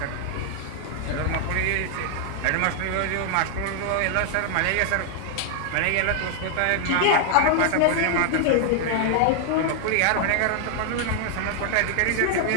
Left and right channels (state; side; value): different; both; correlation 0.00